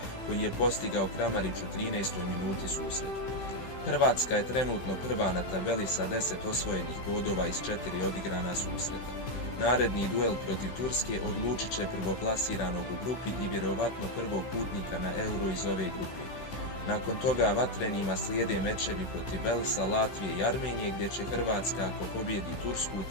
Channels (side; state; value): right; late; 15 ms